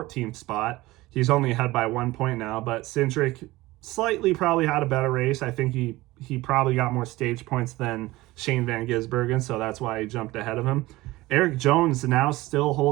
spot. He's only ahead by 1 point now, but Cindric slightly probably had a better race. I think he probably got more stage points than Shane Van Gisbergen, so that's why he jumped ahead of him. Eric Jones now still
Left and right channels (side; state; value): left; quieter; 19.1 dB